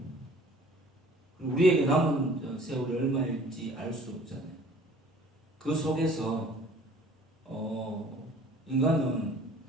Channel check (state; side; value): normal; both; correlation 0.51